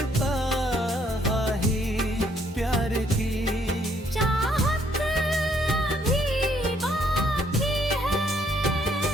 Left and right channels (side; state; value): both; normal; correlation 0.68